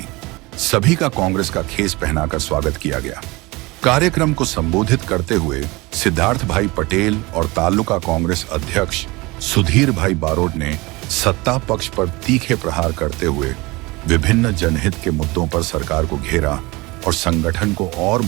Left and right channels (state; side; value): quieter; left; 23.3 dB